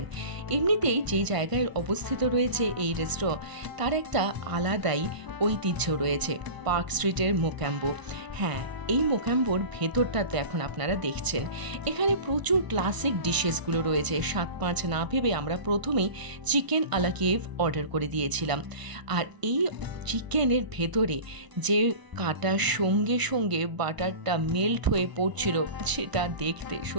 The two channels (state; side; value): late; left; 1.0 ms